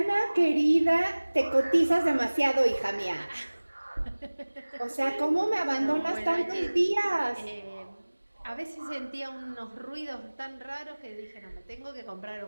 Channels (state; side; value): inverted; both; correlation -1.00